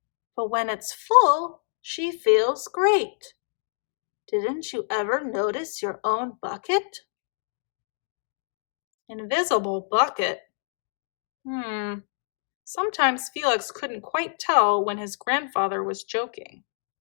but when it's full, she feels great. Didn't you ever notice your own bucket?" Invisible bucket? Sometimes Felix couldn't quite tell when his grandfather was joking.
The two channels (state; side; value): silent; right; digital silence